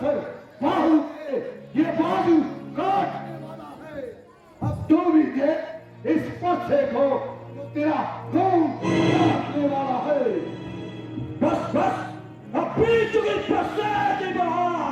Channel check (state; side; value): identical; both; correlation 1.00